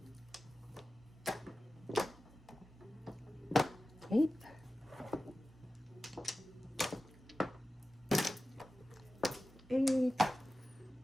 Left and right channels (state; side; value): normal; both; correlation 0.94